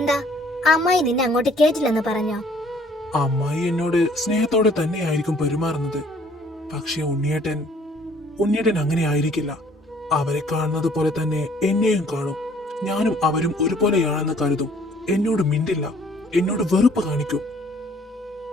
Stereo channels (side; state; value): both; normal; correlation 0.59